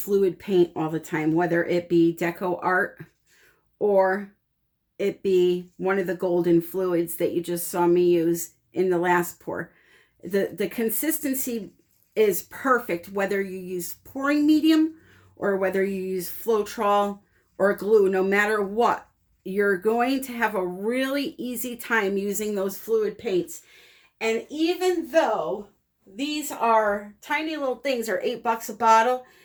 paint all the time, whether it be deco art or it be one of the golden fluids that you just saw me use in the last pour. The consistency is perfect whether you use pouring medium or whether you use Floetrol or glue. No matter what, you're going to have a really easy time using those fluid paints. And even though these are tiny little things, are $8 a bottle,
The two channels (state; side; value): identical; both; correlation 1.00